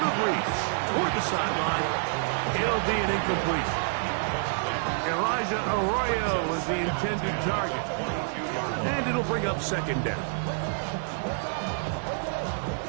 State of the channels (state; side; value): silent; left; 60 dB below the other